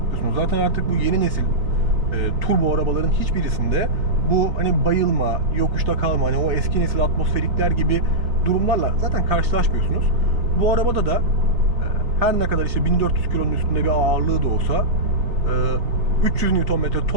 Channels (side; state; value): left; late; 3.6 ms